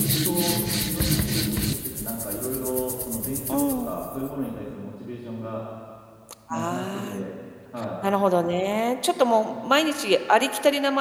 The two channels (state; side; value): identical; both; correlation 1.00